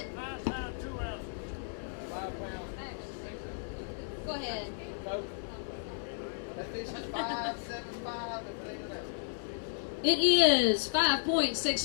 5 pounds, 2 ounces. Go ahead. That fish is 5.75 and clean it out. It is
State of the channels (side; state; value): right; silent; 55 dB below the other